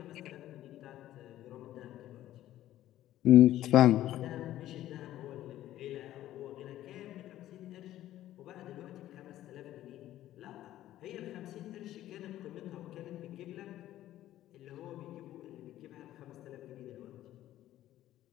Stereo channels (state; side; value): quieter; right; 13.5 dB